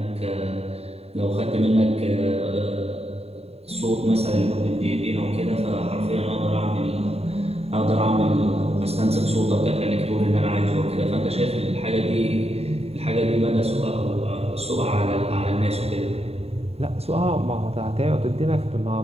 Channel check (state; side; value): late; left; 0.30 ms